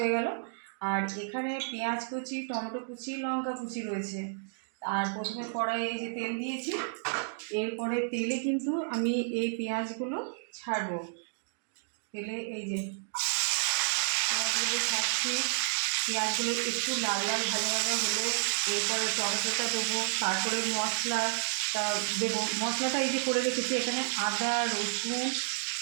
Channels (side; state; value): left; silent; digital silence